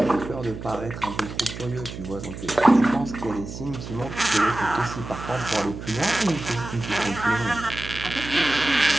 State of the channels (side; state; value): right; noise; hum, 10 dB below the sound